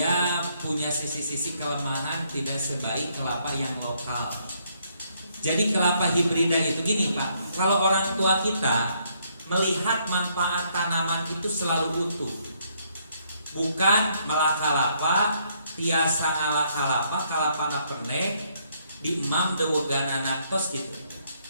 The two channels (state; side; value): inverted; both; correlation -0.71